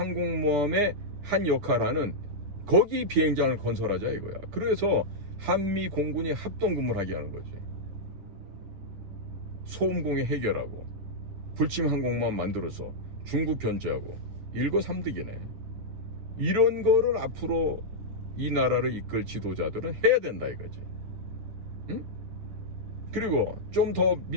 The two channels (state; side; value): late; left; 9.7 ms